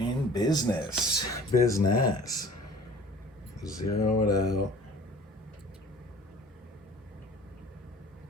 business. Business. Zero it out.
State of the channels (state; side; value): normal; both; correlation 0.46